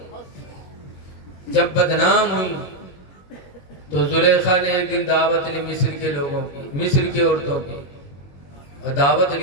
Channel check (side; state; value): right; late; 21 ms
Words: جب بدنام ہوئی تو زلیخا نے ایک دن دعوت لی مصر کے لوگوں کی، مصر کی عورتوں کی، اور دعوت